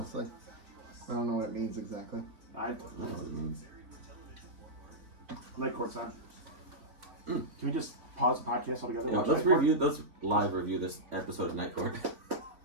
I don't know what it means exactly. I don't know what it means. Night court's on. Can we just pause the podcast altogether? Yeah, watch let's Night Court? let's live review this episode of Night Court.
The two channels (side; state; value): left; late; 3.5 ms